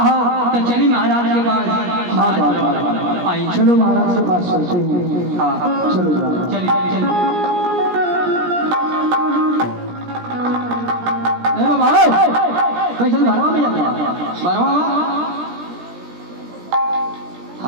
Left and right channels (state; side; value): late; left; 17 ms